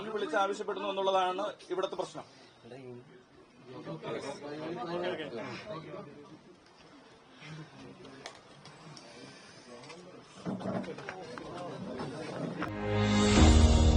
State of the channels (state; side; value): identical; both; correlation 1.00